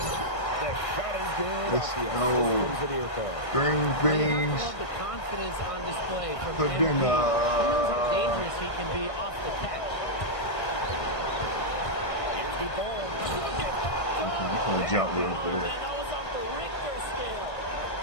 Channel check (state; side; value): late; right; 1.6 ms